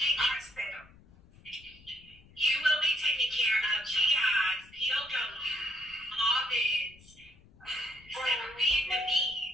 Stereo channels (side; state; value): left; noise; rumble, 25 dB below the sound